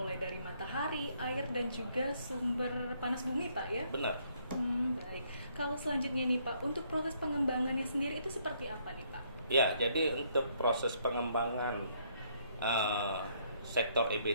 dari matahari, air, dan juga sumber panas bumi Pak ya? Benar. Baik. Kalau selanjutnya nih Pak, untuk proses pengembangannya sendiri itu seperti apa nih Pak? Jadi untuk proses pengembangan sektor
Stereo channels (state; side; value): inverted; both; correlation -0.69